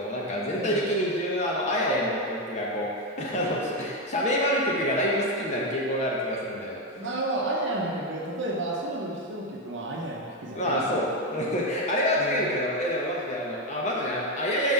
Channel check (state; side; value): normal; both; correlation 0.08